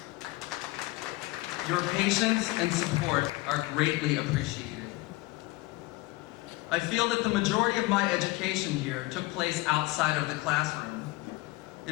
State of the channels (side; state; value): right; quieter; 21.0 dB